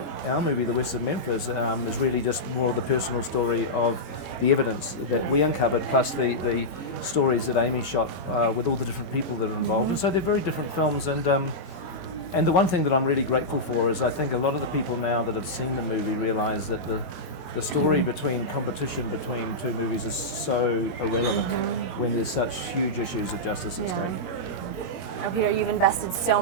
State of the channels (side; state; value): right; late; 22 ms